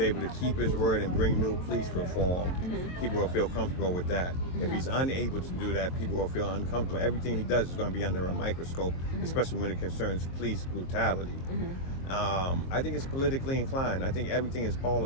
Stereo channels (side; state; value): right; late; 23 ms